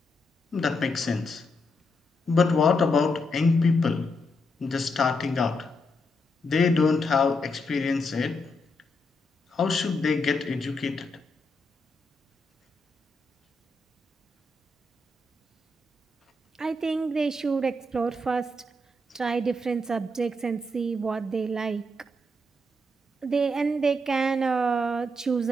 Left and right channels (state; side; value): normal; both; correlation 0.81